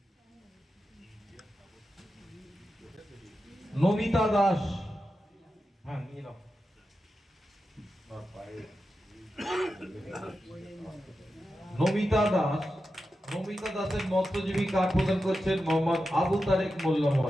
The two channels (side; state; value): both; normal; correlation 0.90